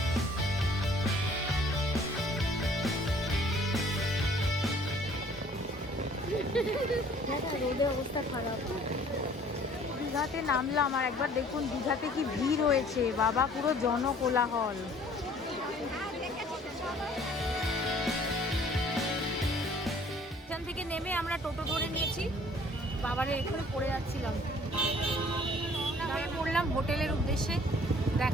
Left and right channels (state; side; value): normal; both; correlation 0.55